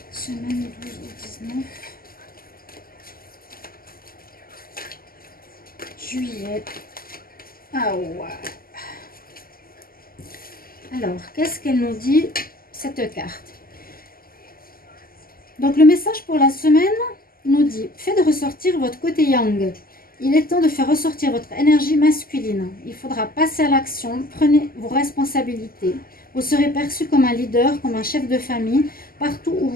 semaine 12 au 19 juillet. Ah ouais. Alors, qu'est-ce qu'elle nous dit, cette carte? Donc, le message pour la semaine nous dit « Faites ressortir votre côté yang. Il est temps de faire ressortir votre énergie masculine. Il faudra passer à l'action. Prenez vos responsabilités. Vous serez perçu comme un leader, comme un chef de famille, partout où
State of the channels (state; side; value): late; right; 0.42 ms